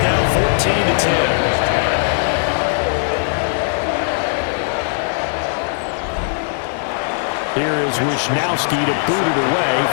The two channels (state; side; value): silent; right; 67 dB below the other